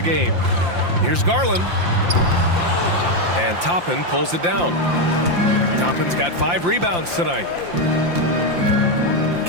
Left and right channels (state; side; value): late; left; 5.8 ms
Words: game. Here's Garland. And Toppin pulls it down. Toppin's got 5 rebounds tonight.